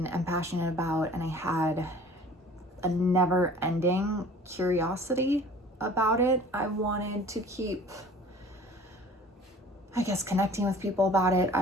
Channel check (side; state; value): both; normal; correlation 0.47